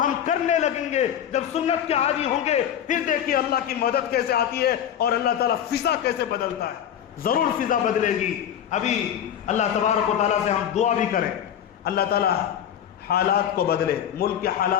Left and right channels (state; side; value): quieter; right; 9.8 dB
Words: ہم کرنے لگیں گے, جب سنت کے عادی ہوں گے, پھر دیکھیے اللہ کی مدد کیسے آتی ہے اور اللہ تعالیٰ فضا کیسے بدلتا ہے. ضرور فضا بدلے گی. ابھی اللہ تبارک و تعالیٰ سے ہم دعا بھی کریں, اللہ تعالیٰ حالات کو بدلے, ملک کے